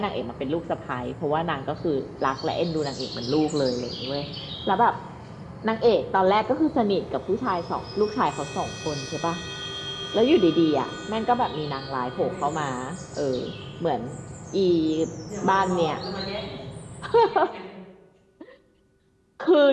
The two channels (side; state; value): both; identical; correlation 1.00